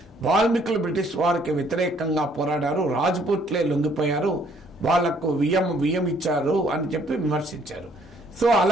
వాల్మీకులు బ్రిటిష్ వారికి వ్యతిరేకంగా పోరాడారు, రాజ్పూట్లే లొంగిపోయారు, వాళ్లకు వియ్యం ఇచ్చారు అని చెప్పి విమర్శించారు. సో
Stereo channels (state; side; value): normal; both; correlation 0.64